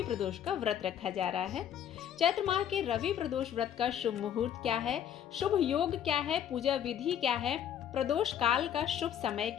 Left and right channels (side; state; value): right; quieter; 9.6 dB